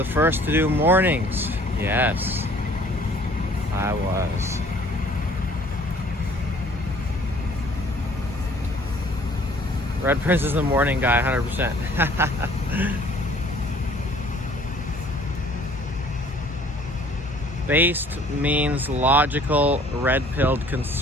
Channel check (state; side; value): normal; both; correlation 0.55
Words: first to do mornings. Yes, I was. Red Prince is the morning guy, 100%. Based means logical, red-pilled